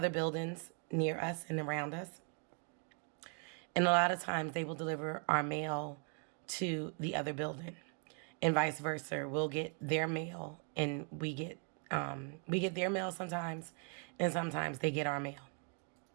buildings near us and around us. And a lot of times they will deliver our mail to the other building, and vice versa. We'll get their mail, and we get their mail sometimes, and sometimes they get our mail.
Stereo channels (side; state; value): left; quieter; 38.4 dB